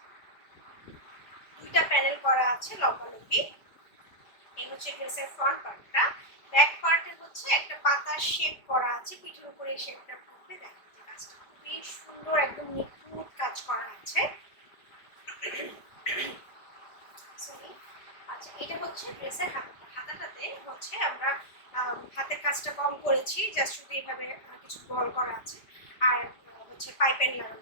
2টা প্যানেল করা আছে লম্বালম্বি। এই হচ্ছে ড্রেসের ফ্রন্ট পার্টটা। ব্যাক পার্টে হচ্ছে একটা পাতা শেপ করা আছে, পিঠের উপরে এই শেপটা পড়বে। দেখেন যে কাজটা খুবই সুন্দর, একদম নিখুঁত কাজ করা আছে। সরি, আচ্ছা, এটা হচ্ছে ড্রেসের হাতাটাতে হচ্ছে আমরা হাতের কাজটা কম করেছি, জাস্ট শুধু এইভাবে কিছু বল করা আছে আর হচ্ছে পাইপেন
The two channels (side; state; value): right; late; 5.0 ms